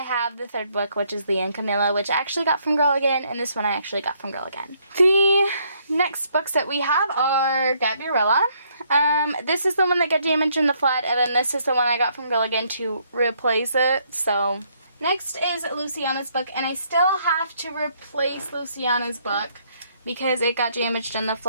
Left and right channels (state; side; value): inverted; both; correlation -0.69